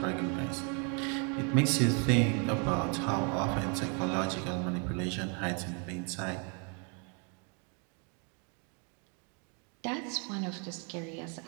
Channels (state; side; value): quieter; left; 37.1 dB